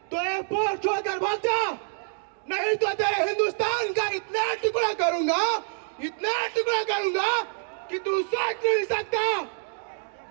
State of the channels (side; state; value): left; silent; digital silence